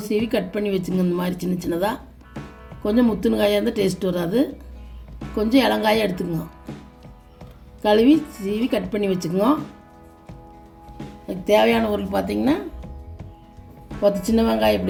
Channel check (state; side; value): identical; both; correlation 1.00